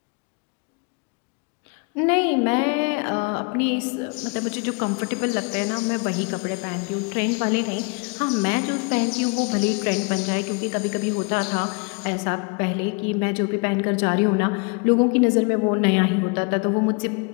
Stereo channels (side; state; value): right; quieter; 33.2 dB